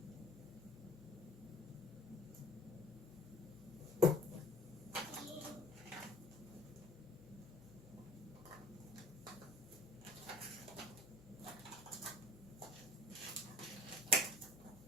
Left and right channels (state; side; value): normal; both; correlation 0.50